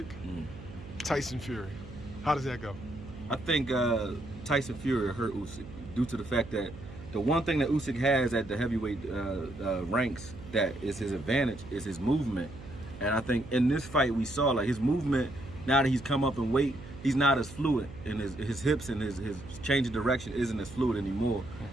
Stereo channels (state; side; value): noise; right; hum, 15 dB below the sound